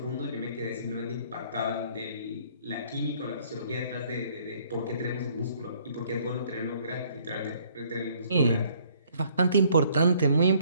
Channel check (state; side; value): inverted; both; correlation -0.62